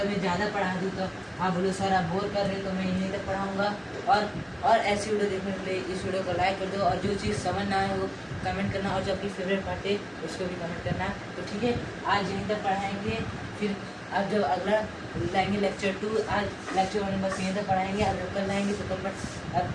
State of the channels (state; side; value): identical; both; correlation 1.00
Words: मैं ज़्यादा पढ़ा दूँ तो आप बोलो सर आप बोर कर रहे हो, तो मैं यहीं तक पढ़ाऊँगा। और ऐसी वीडियो देखने के लिए इस वीडियो को लाइक कर दो, और जो चीज़ समझ ना आए वो कमेंट करना, और जो आपकी फेवरेट पार्ट है उसको भी कमेंट करना। तो ठीक है, आज यहीं तक पढ़ाएंगे, फिर अब जब अगला लाएंगे लेक्चर 2, आज लेक्चर 1 बस यहीं तक पढ़ाएंगे। अब जब कल लाएंगे तो कल अब